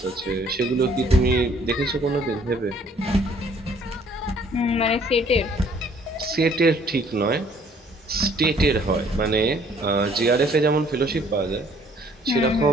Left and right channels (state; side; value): normal; both; correlation 0.60